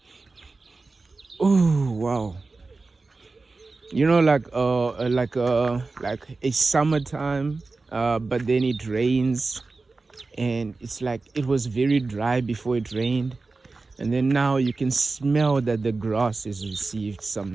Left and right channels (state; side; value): quieter; left; 3.7 dB